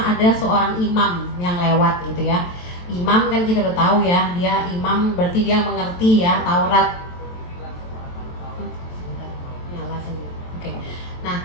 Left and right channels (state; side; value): late; right; 23 ms